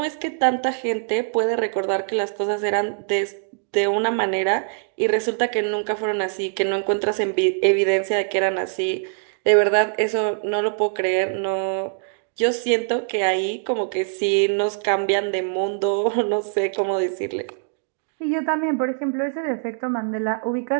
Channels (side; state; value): left; silent; digital silence